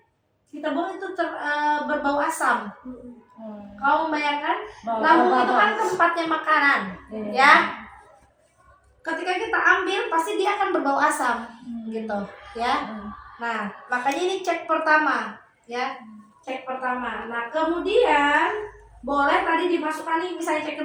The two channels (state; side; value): identical; both; correlation 1.00